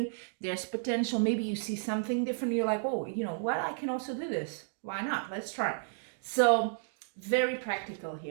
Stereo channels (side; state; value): left; silent; digital silence